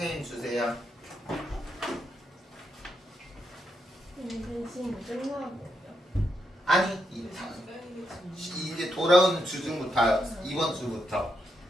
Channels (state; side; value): normal; both; correlation 0.81